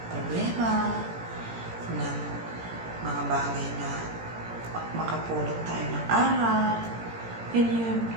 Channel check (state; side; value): late; left; 17 ms